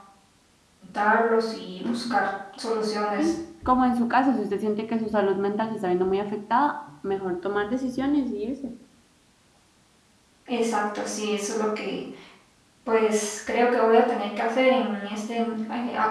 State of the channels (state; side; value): identical; both; correlation 1.00